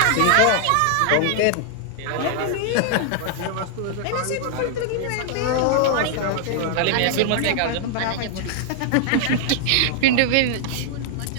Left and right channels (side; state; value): both; different; correlation -0.01